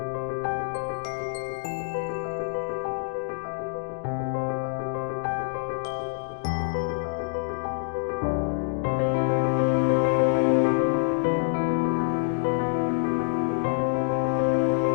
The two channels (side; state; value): right; silent; digital silence